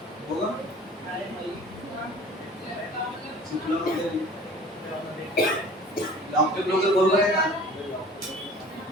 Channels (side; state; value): both; normal; correlation 0.45